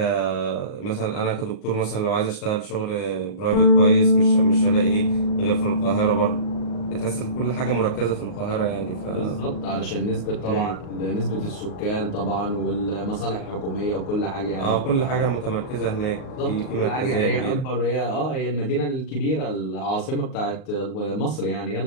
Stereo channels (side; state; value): right; late; 38 ms